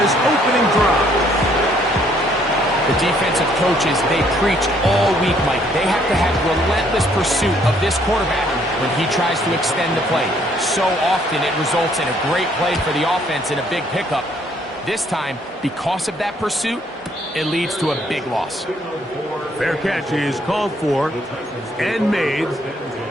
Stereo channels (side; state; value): both; normal; correlation 0.65